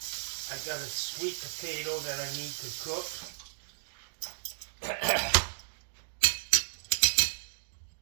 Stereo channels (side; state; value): left; silent; digital silence